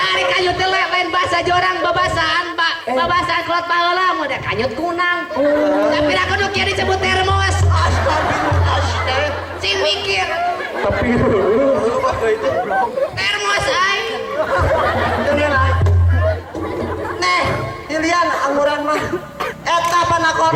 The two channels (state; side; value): identical; both; correlation 1.00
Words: kanyut teh lain bahasa jorang babasaan, Pak. Babasaan kelot baheula mah da kanyut kunang. Tapi da kudu kieu disebut termos. astagfirullah Cing mikir. tapi Termos aing. Neh dilian anguran mah eta panakon